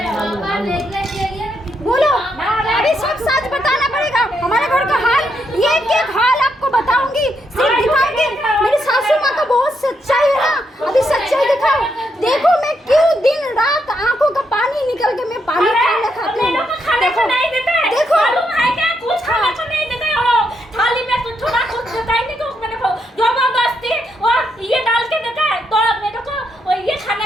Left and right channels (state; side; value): normal; both; correlation 0.79